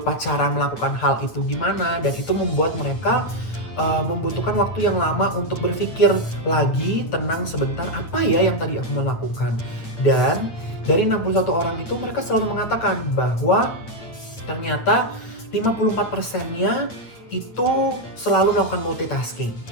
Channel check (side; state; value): right; late; 8.8 ms